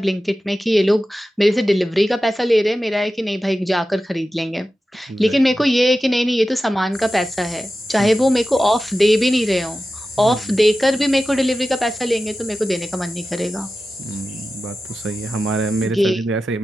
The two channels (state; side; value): normal; both; correlation 0.94